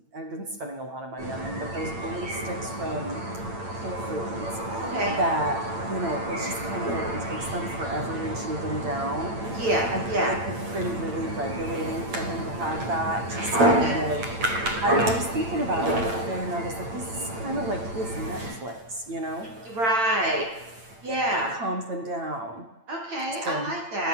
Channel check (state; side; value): late; left; 8.9 ms